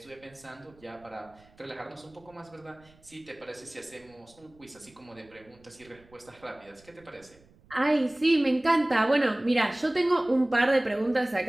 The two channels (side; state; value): right; noise; rumble, 28 dB below the sound